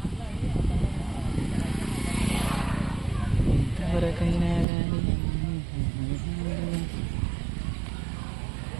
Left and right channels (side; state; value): left; drops out; at 4.7 s